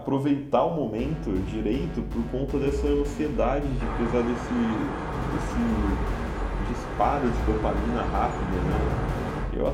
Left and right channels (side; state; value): both; identical; correlation 1.00